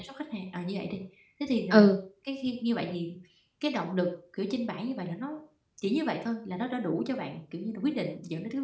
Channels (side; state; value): both; identical; correlation 1.00